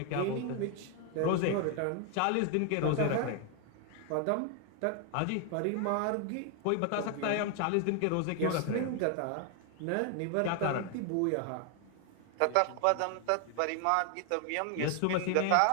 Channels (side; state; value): both; different; correlation 0.00